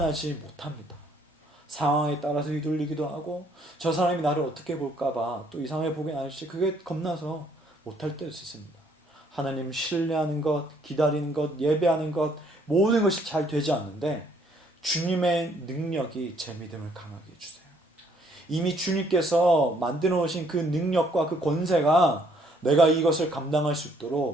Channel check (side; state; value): both; normal; correlation 0.65